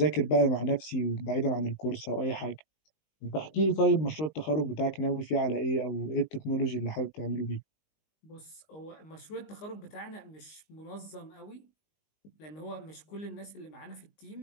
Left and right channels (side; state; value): right; late; 19 ms